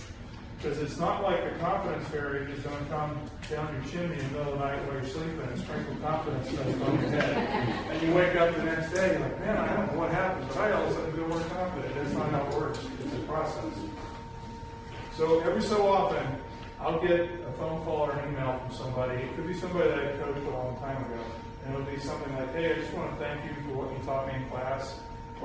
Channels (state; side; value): identical; both; correlation 1.00